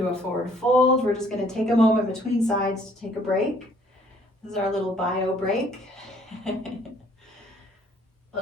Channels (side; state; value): both; normal; correlation 0.61